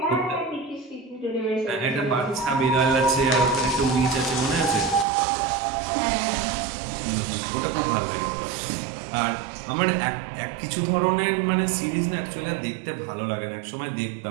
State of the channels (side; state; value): left; drops out; at 5.1 s